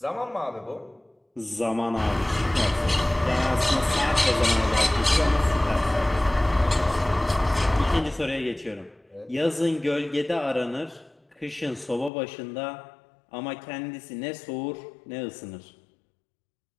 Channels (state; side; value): drops out; right; at 12.1 s